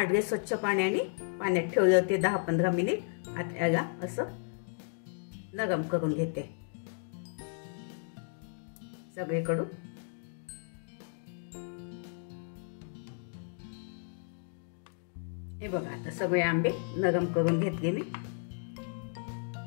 स्वच्छ पाण्याने, पाण्यात ठेवले होते 10-15 मिनिट। आता याला असं नरम करून घेते सगळीकडून। हे बघा आता सगळे आंबे नरम करून घेतले मी।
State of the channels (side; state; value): right; silent; digital silence